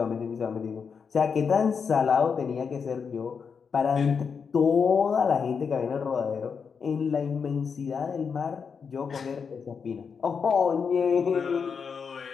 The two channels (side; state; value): right; quieter; 6.0 dB